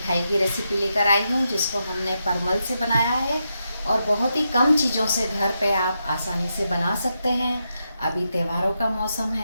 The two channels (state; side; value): inverted; both; correlation -0.85